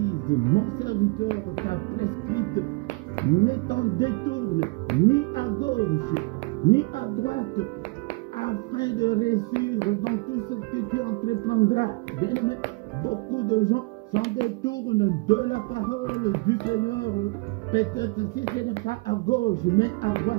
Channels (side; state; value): left; quieter; 27.4 dB